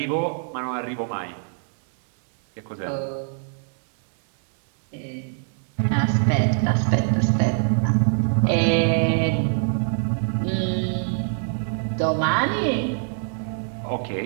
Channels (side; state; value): left; silent; digital silence